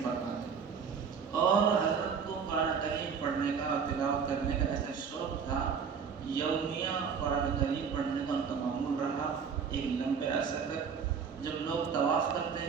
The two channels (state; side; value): quieter; left; 6.4 dB